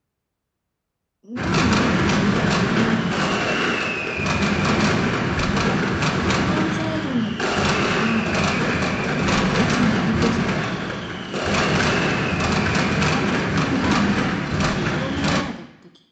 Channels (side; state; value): both; identical; correlation 1.00